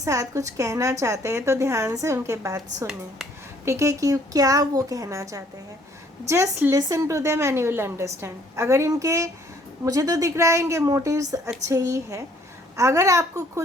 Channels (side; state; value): both; normal; correlation 0.62